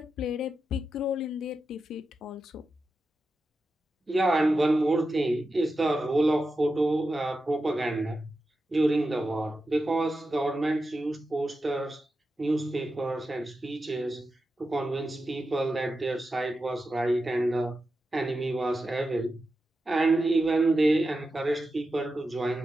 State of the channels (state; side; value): normal; both; correlation 0.90